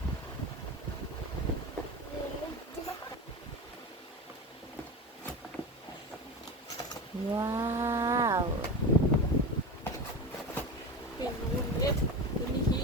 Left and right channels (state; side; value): normal; both; correlation 0.26